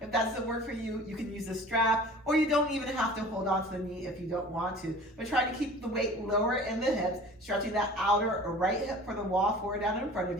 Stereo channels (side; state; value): both; normal; correlation 0.43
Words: If that doesn't work for you, you can use a strap, or you don't even have to hold on to the knee if you don't want to. But try to keep the weight lower in the hips, stretching that outer or right hip for the wall forward down in front